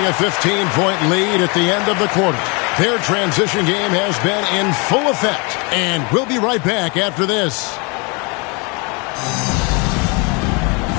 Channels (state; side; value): quieter; right; 30.8 dB